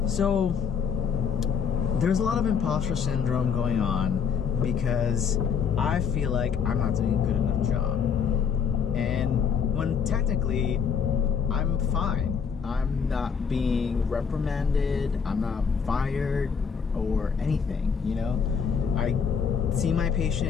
So, there's a lot of imposter syndrome going on because I feel like I'm not doing a good enough job. And when technically I'm fine. I'm not being reprimanded, I'm not fired or anything, I see my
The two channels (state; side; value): quieter; right; 6.7 dB